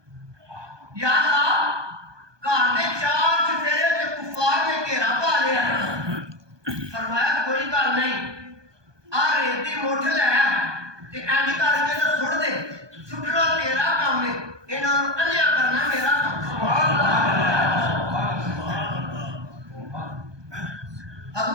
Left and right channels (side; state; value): left; late; 1.2 ms